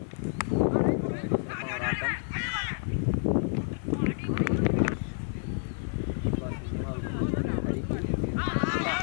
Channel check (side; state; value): right; silent; 58 dB below the other